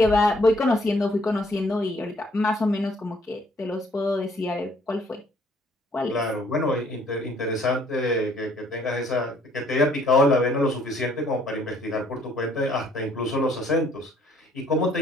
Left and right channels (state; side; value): normal; both; correlation 0.62